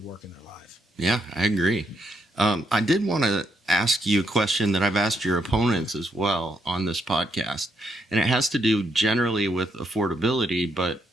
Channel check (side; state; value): both; normal; correlation 0.77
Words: work in their life. Yeah, I agree. I did want to ask you a question that I've asked your opponents as well on this podcast, and it has to do generally with affordability, but,